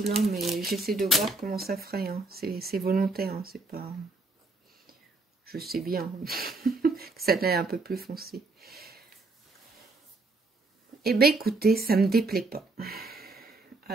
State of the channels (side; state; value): left; quieter; 3.3 dB